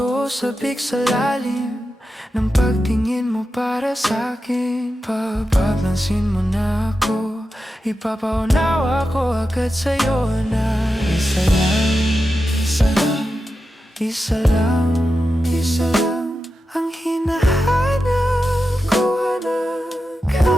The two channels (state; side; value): normal; both; correlation 0.90